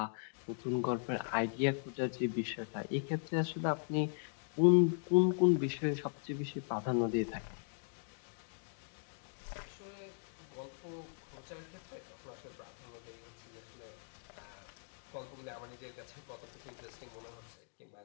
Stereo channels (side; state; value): right; silent; digital silence